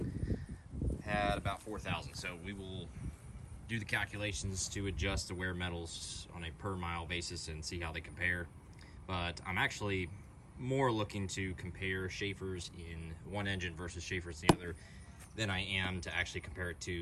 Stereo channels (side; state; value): both; identical; correlation 1.00